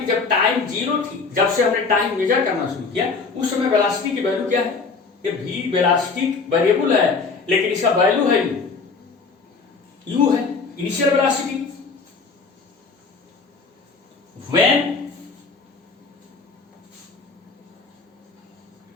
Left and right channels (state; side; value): quieter; right; 4.6 dB